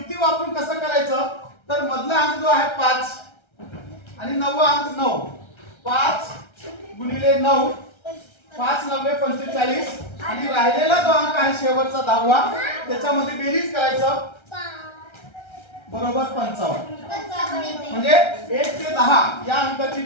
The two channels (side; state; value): right; late; 1.3 ms